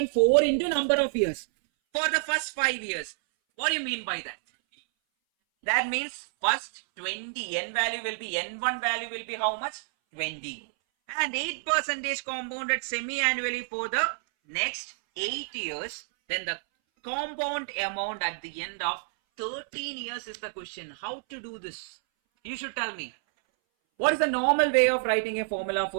4 into number of years. For the first 5 years. What do you mean by that? That means first 20, N value will be, N1 value will be how much? 20. And 8% compounded semi-annually for the next 8 years. Then the compound amount at the end of 13 years is the question. How to do this? You should tell me. What is the normal way of writing a formula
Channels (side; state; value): left; silent; 59 dB below the other